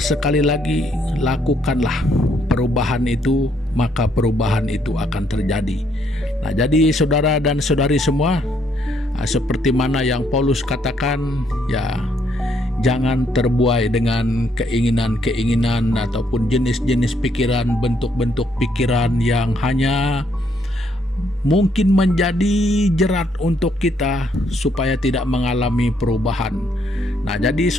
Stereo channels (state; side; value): normal; both; correlation 0.71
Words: lagi lakukanlah perubahan itu, maka perubahan itu akan terjadi. Nah, jadi saudara dan saudari semua, seperti mana yang Paulus katakan, ya, jangan terbuai dengan keinginan-keinginan ataupun jenis-jenis pikiran, bentuk-bentuk pikiran yang hanya mungkin menjadi jerat untuk kita supaya tidak mengalami perubahan. Nah, jadi